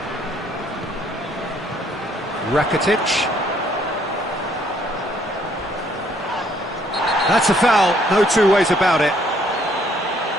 Rakitic. That's a foul, no two ways about it.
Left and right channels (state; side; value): normal; both; correlation 0.65